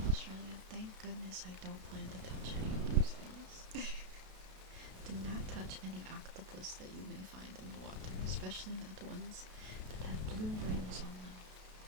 Australia. Thank goodness I don't plan to touch any of those things. Do not touch any octopus that you may find in the water, especially not ones that have blue rings on them.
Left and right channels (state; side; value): late; left; 32 ms